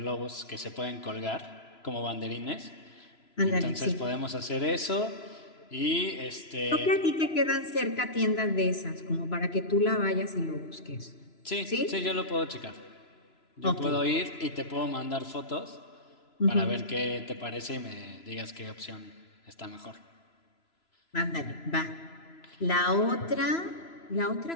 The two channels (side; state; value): right; late; 3.0 ms